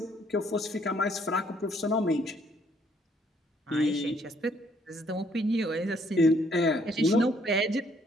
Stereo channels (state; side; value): normal; both; correlation 0.66